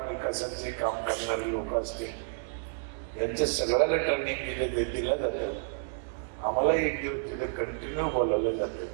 विकासाचे काम करणारे लोक असते, यांच्या सगळ्याला ट्रेनिंग दिलं जातं. आम्हाला एक दिवस तिथे कंटिन्यू बोलवलं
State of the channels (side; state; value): left; silent; digital silence